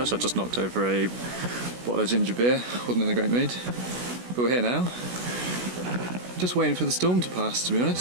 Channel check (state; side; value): late; left; 16 ms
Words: I just knocked over a bottle of ginger beer. Wasn't in a great mood. But we're here now. Just waiting for the storm to pass, to be